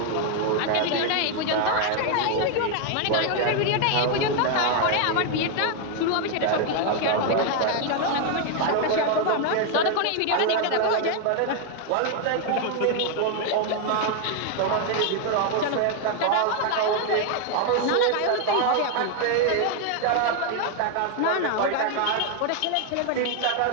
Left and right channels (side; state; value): both; different; correlation 0.01